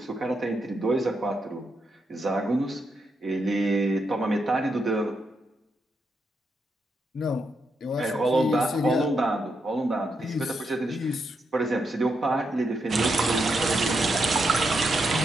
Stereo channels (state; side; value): normal; both; correlation 0.82